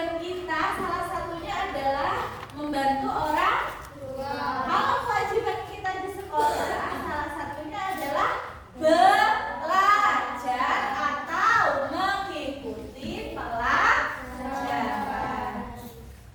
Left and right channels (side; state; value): both; identical; correlation 1.00